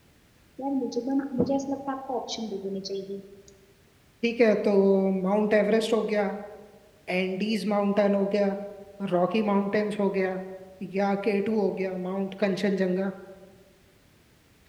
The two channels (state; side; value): identical; both; correlation 1.00